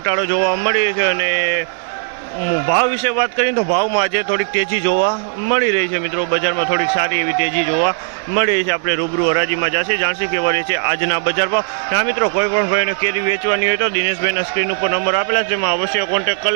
જોવા મળી છે અને ભાવ વિશે વાત કરીએ તો ભાવમાં આજે થોડીક તેજી જોવા મળી રહી છે મિત્રો। બજારમાં થોડીક સારી એવી તેજી જોવા મળી રહી છે। આપણે રૂબરૂ હરાજીમાં જાણશી કેવા રહે છે આજના બજાર ભાવ। હા મિત્રો, કોઈ પણ ભાઈને કેરી વેચવાની હોય તો દિનેશભાઈના સ્ક્રીન ઉપર નંબર આપેલા છે, જેમાં અવશ્ય કોન્ટેક્ટ કરી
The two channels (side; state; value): left; silent; 68 dB below the other